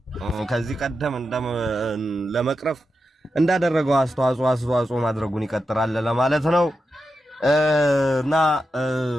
ከዚህ ቀደም ለመቅረፍ እንዳደረገው አስተዋጽኦ ማድረጉን ይቀጥላል ለማለት ነው። እና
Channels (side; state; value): both; normal; correlation 0.89